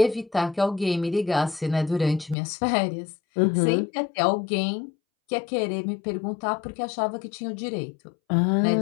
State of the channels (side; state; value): right; drops out; at 2.4 s